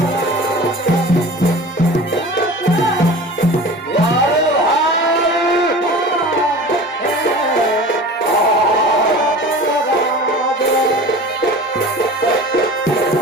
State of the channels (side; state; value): both; normal; correlation 0.38